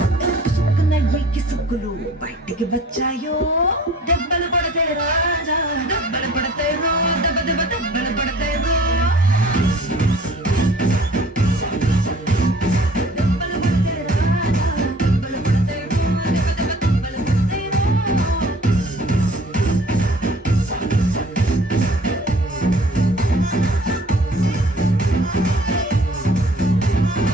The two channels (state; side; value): normal; both; correlation 0.51